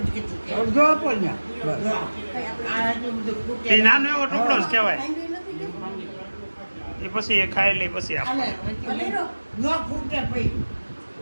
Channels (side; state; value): both; inverted; correlation -1.00